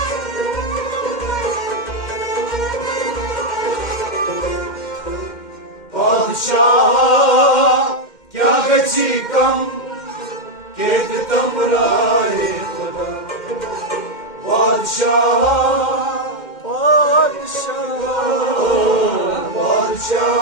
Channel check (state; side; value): late; right; 2.1 ms